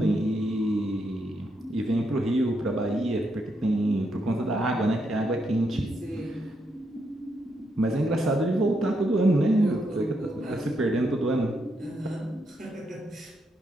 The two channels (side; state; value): both; normal; correlation 0.79